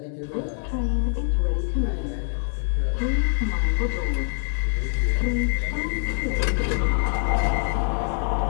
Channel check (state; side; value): silent; right; 62 dB below the other